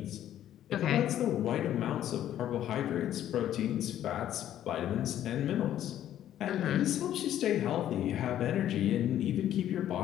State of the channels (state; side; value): quieter; right; 11.6 dB